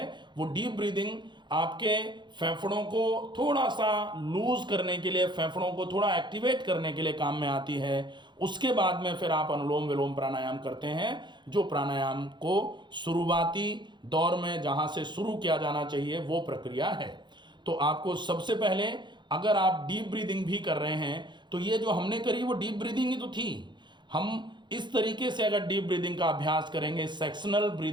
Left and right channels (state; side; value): late; left; 0.22 ms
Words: वो डीप ब्रीदिंग आपके फेफड़ों को थोड़ा सा लूज करने के लिए, फेफड़ों को थोड़ा एक्टिवेट करने के लिए काम में आती है। उसके बाद में फिर आप अनुलोम विलोम प्राणायाम करते हैं, जो प्राणायाम को शुरुआती दौर में जहां से शुरू किया जाना चाहिए वो प्रक्रिया है। तो आपको सबसे पहले अगर आप डीप ब्रीदिंग भी कर रहे हैं तो ये जो हमने करी वो डीप ब्रीदिंग ही तो थी। हम इस तरीके से अगर डीप ब्रीदिंग का अभ्यास करेंगे सेक्शनल